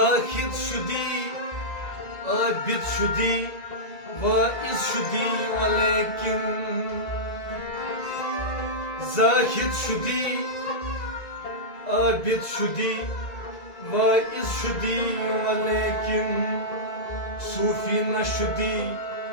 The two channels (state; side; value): late; right; 2.0 ms